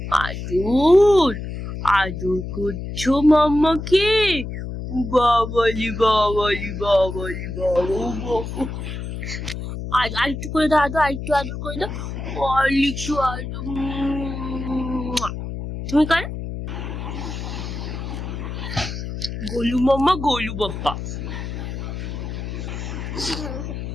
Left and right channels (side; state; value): left; noise; hum, 6 dB below the sound